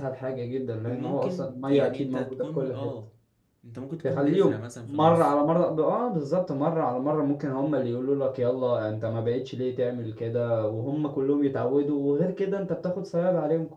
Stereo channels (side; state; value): both; identical; correlation 1.00